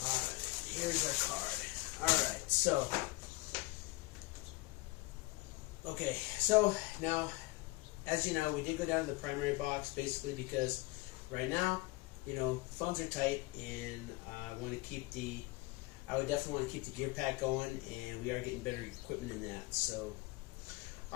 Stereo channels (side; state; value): right; quieter; 22.8 dB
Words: Here's our card. Alright, so now, as you know, we did go down to the primary box basically because right now, funds are tight, and I would definitely want to keep the gear pack going, and we are getting better equipment in that. So,